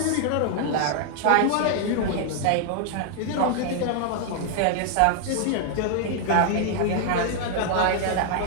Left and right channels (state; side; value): different; both; correlation 0.00